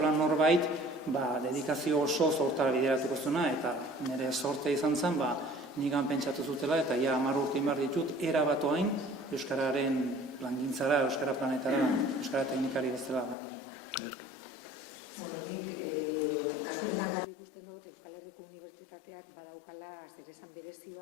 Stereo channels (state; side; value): drops out; right; at 13.4 s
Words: norbait, dedikazio oso hortara bideratuko zuena, eta nire sorte izan zen, nigan pentsatu zutela, eta 10 urte inbar ditut, erabatoain euskararen plangintzara, euskara planetara, euskara teknikari bezala ganen. Kasu honetan garbi ikusten dut, Euskal Herriko Unibertsitateak badaukala zeresan berezi